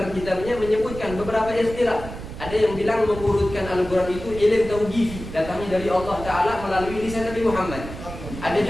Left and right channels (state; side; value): noise; right; rumble, 11 dB below the sound